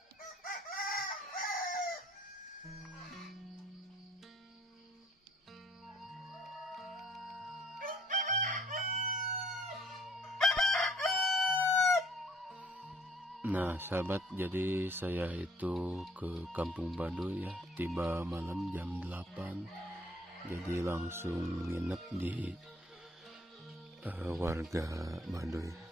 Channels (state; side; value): normal; both; correlation 0.60